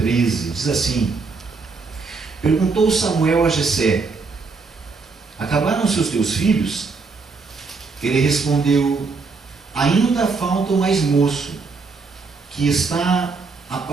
diz assim: Perguntou Samuel a Jessé: Acabaram-se os teus filhos? Ele respondeu: Ainda falta o mais moço, que está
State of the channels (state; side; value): quieter; left; 4.4 dB